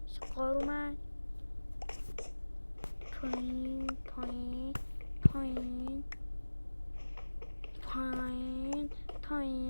سقار اومد پایین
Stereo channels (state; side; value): inverted; both; correlation -1.00